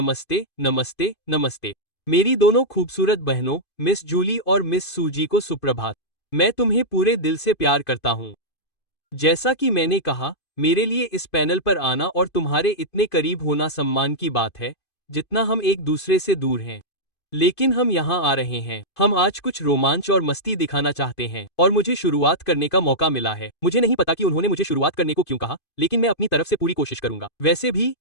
नमस्ते नमस्ते। मेरी दोनों खूबसूरत बहनों मिस जूली और मिस सूजी को सुप्रभात। मैं तुम्हें पूरे दिल से प्यार करता हूँ। जैसा कि मैंने कहा, मेरे लिए इस पैनल पर आना और तुम्हारे इतने करीब होना सम्मान की बात है, जितना हम एक दूसरे से दूर हैं। लेकिन हम यहाँ आ रहे हैं। हम आज कुछ रोमांच और मस्ती दिखाना चाहते हैं और मुझे शुरुआत करने का मौका मिला है। मुझे नहीं पता कि उन्होंने मुझे शुरुआत करने को क्यों कहा, लेकिन मैं अपनी तरफ से पूरी कोशिश करूंगा। वैसे भी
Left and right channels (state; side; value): late; right; 2.5 ms